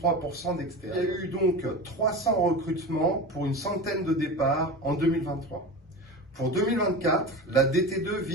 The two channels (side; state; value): both; normal; correlation 0.28